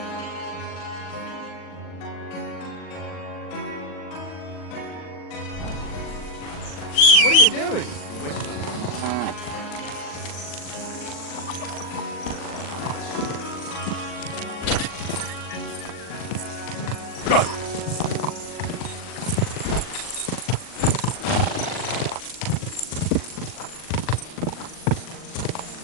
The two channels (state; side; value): late; right; 40 ms